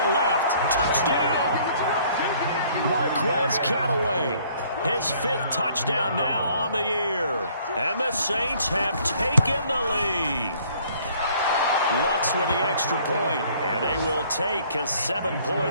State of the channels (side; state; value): both; inverted; correlation -0.59